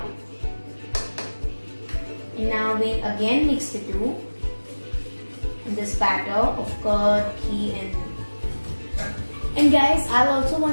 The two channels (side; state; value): both; inverted; correlation -1.00